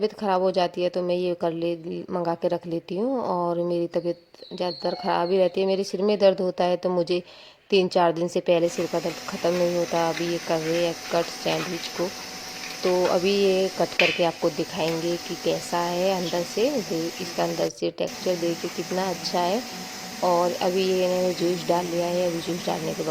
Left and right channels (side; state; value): both; identical; correlation 1.00